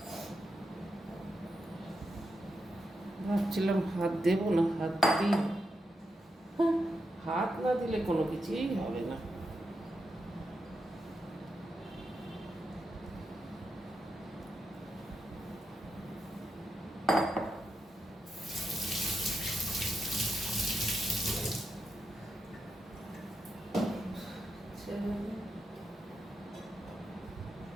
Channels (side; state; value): both; normal; correlation 0.85